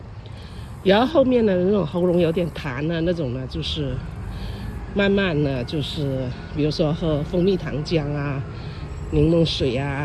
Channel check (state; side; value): identical; both; correlation 1.00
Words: 然后后面的那种喉咙有点痰那种呢，就是慢慢呢，就是比如说喝蜂蜜糖浆柠檬水